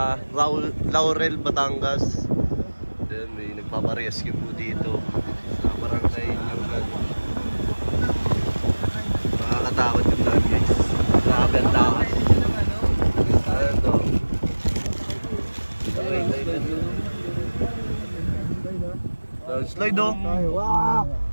Laurel, Batangas. Then may nagpaparescue po dito sa barangay Nyugan. Nakakatakot yung daan guys. Grabe ang takas. Ano to? Slide oh. Wow!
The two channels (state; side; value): inverted; both; correlation -1.00